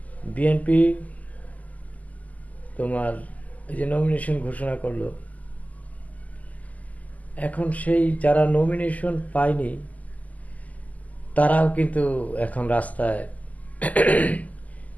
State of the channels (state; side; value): late; right; 0.076 ms